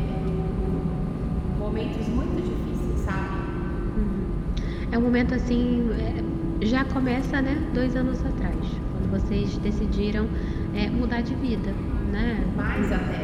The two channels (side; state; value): both; identical; correlation 1.00